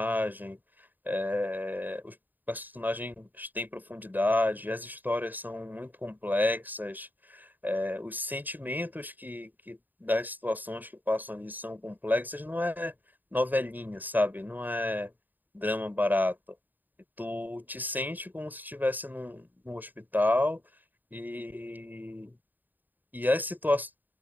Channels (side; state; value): left; late; 0.087 ms